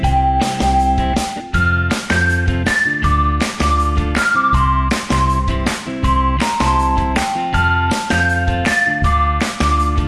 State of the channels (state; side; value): identical; both; correlation 1.00